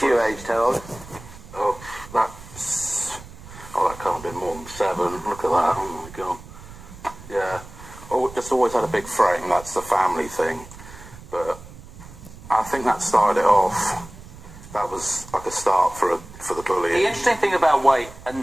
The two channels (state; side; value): noise; right; rumble, 17 dB below the sound